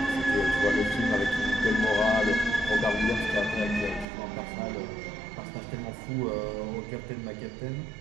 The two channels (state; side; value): drops out; left; at 4.0 s